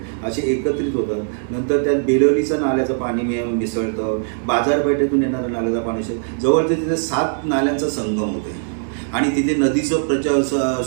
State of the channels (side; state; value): left; silent; digital silence